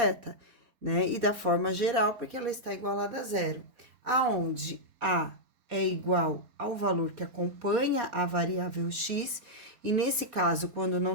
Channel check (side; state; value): left; late; 4.6 ms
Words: né? E da forma geral, porque ela está igualada a zero, aonde a é igual ao valor que acompanha a variável x, e nesse caso, quando